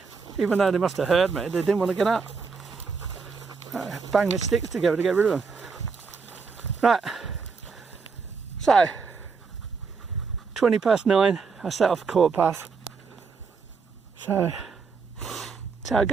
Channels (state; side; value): quieter; left; 5.1 dB